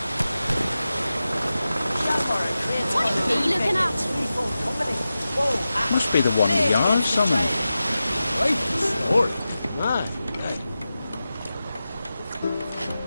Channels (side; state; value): both; inverted; correlation -0.93